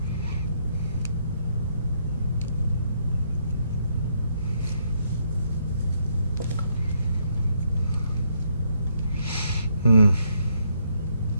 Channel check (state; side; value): inverted; both; correlation -0.74